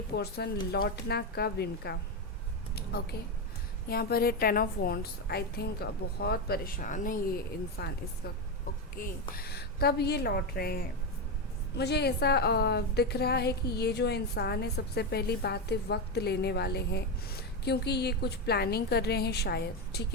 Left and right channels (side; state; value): both; normal; correlation 0.11